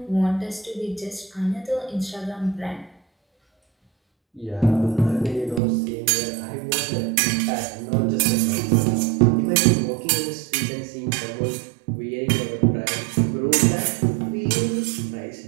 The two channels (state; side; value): drops out; left; at 5.6 s